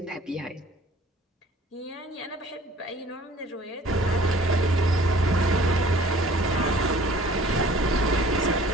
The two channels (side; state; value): both; normal; correlation 0.51